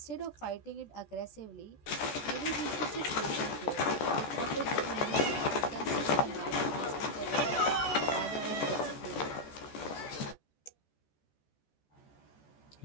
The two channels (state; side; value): late; right; 14 ms